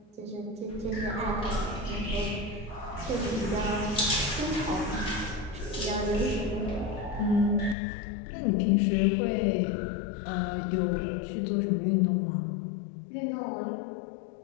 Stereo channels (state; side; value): drops out; right; at 7.8 s